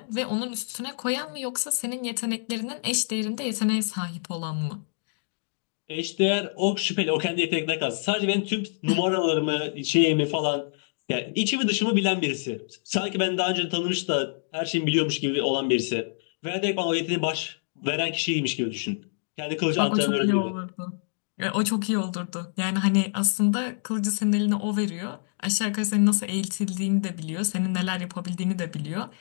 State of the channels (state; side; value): silent; right; digital silence